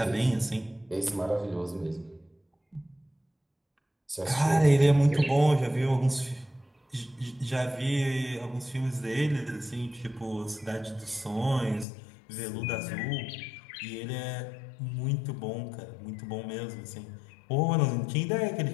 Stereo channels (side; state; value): right; drops out; at 11.9 s